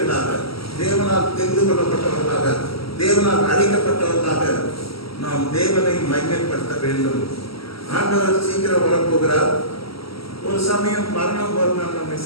தேவனால் தெரிந்து கொள்ளப்பட்டவர்களாக, தேவனால் அழைக்கப்பட்டவர்களாக நாம் தேவனை மகிமைப்படுத்த வேண்டும். ஆண்டவர் சீக்கிரம் வரப்போகிறார். ஒரு சமயம் மரணம் ஒரு நாள் நம்மை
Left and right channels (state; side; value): late; right; 0.75 ms